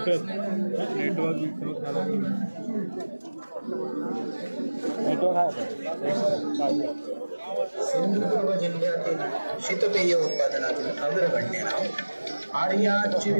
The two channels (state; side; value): inverted; both; correlation -1.00